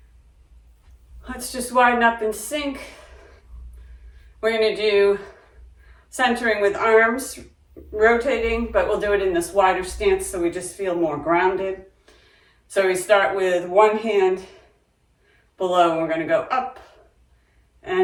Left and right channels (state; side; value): identical; both; correlation 1.00